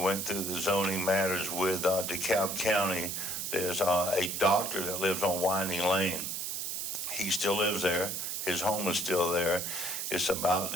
went through the zoning matters with DeKalb County, there's a doctor that lives on Winding Lane. He still lives there. His home is still there. It's about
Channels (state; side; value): noise; right; hiss, 3 dB below the sound